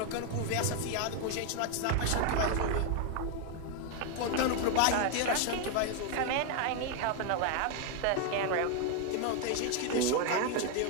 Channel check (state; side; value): different; both; correlation 0.01